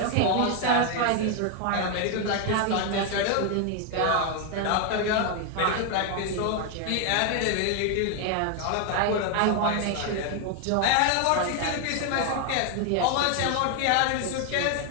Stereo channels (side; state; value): both; different; correlation 0.01